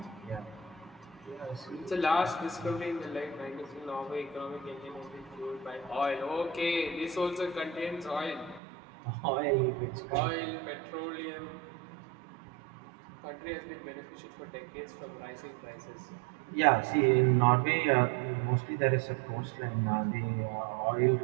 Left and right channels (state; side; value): drops out; left; at 8.6 s